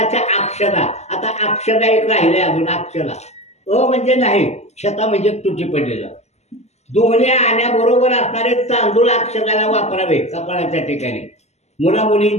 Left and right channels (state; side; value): late; right; 0.32 ms